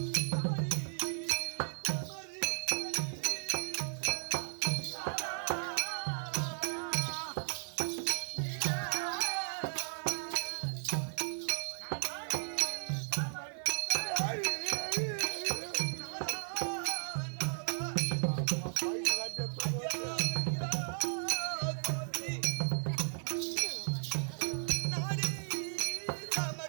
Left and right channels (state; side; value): silent; left; digital silence